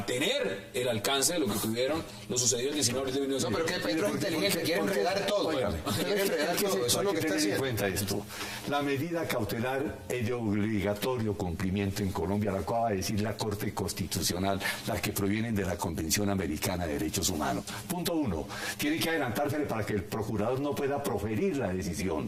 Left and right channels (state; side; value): identical; both; correlation 1.00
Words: tener el alcance de lo que tuvieron los sucedidos el 19 de 19. No, pero que Petro es inteligente, quiere enredar todo. Quiere enredar todo, eso es lo que está haciendo. En cuenta esto. La medida cautelar es de obligatorio cumplimiento en Colombia, la acaba de decir la Corte Constitucional, las que provienen de la Convención Americana de Derechos Humanos. Punto 1. Tiene que adelantársele para que el procurador no pueda proferir la